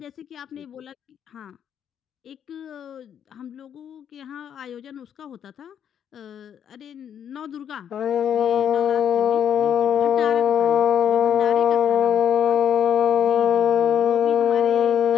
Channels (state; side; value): quieter; right; 8.9 dB